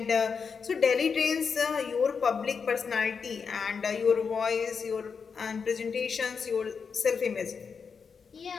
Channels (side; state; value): right; quieter; 5.8 dB